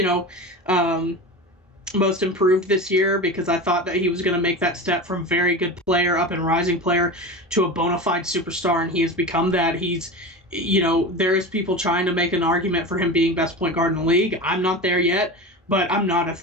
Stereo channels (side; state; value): both; normal; correlation 0.27